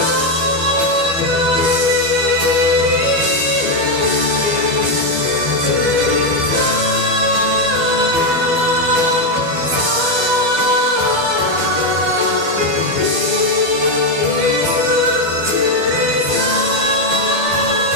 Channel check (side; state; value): left; late; 12 ms